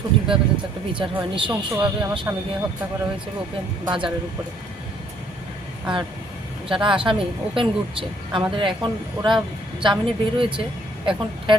যাতে একটা বিচার হয়। নৃশংসভাবে আমার স্বামীকে হত্যা করা হয়েছে ওপেন বাজারের উপরে। আর যারা আসামি ওপেন ঘুরছে, আমাদের এখন ওরা জামিনে বের হয়েছে, এখন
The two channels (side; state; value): both; normal; correlation 0.64